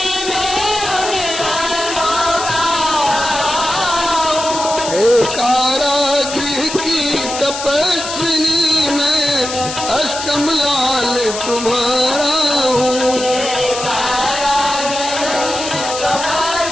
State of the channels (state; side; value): noise; left; hiss, 7 dB below the sound